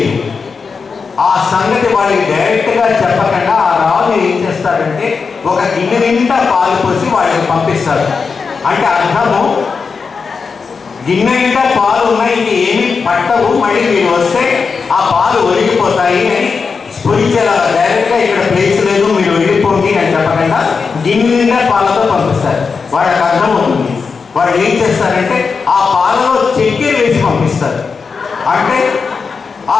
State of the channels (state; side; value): quieter; right; 5.2 dB